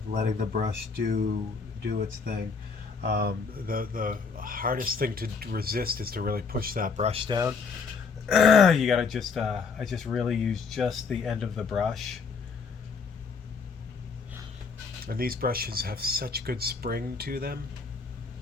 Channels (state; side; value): quieter; right; 5.2 dB